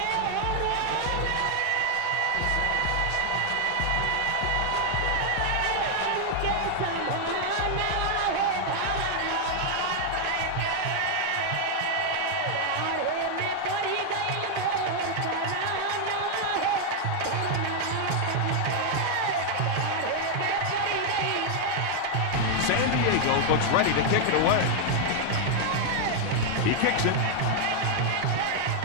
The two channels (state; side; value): different; both; correlation 0.00